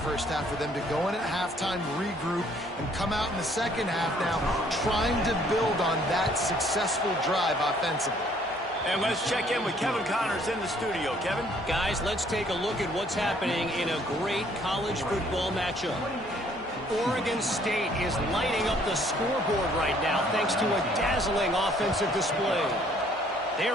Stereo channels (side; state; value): both; normal; correlation 0.62